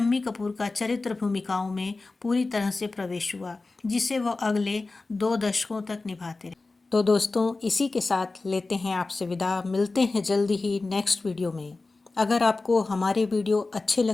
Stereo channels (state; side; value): quieter; right; 3.5 dB